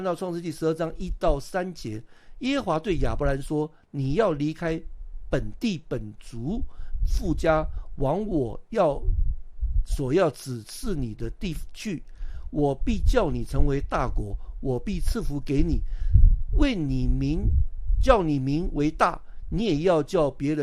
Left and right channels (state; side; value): identical; both; correlation 1.00